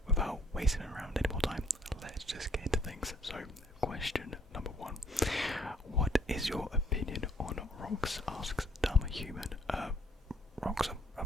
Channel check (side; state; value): both; normal; correlation 0.64